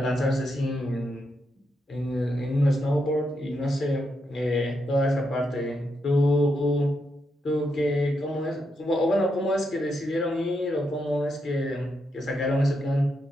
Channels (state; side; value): normal; both; correlation 0.82